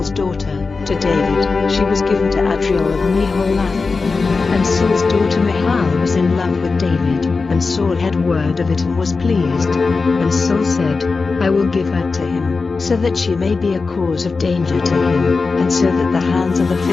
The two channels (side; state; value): right; quieter; 4.3 dB